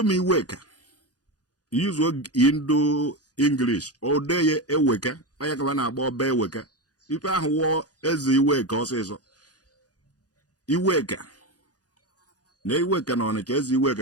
m Iweka use Indo English o de ye Eweka anya ka na-agba ọba Eweka ife ahụ wụọ eze Iweka ọsịsọ Iweka na Iweka na Ọnịcha eze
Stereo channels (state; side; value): late; right; 0.68 ms